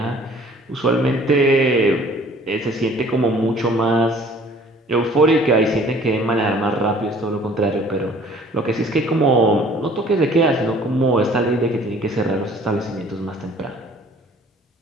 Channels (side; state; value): both; normal; correlation 0.53